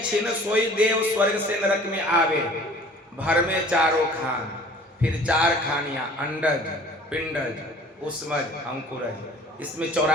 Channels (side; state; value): both; normal; correlation 0.49